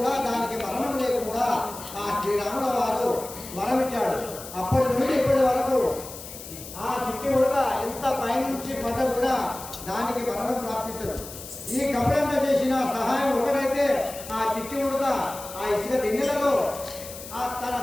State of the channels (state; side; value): noise; left; hiss, 13 dB below the sound